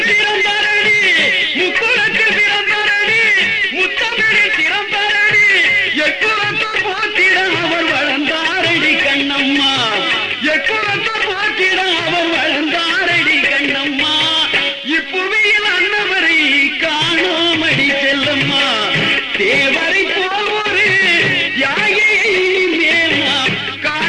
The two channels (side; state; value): both; identical; correlation 1.00